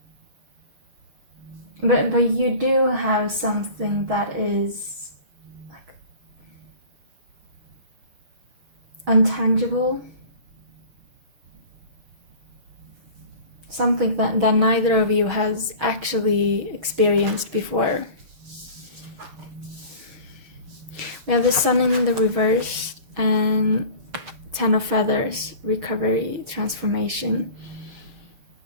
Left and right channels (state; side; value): late; left; 6.2 ms